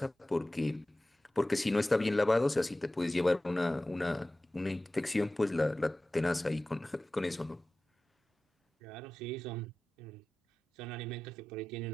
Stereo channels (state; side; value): normal; both; correlation 0.96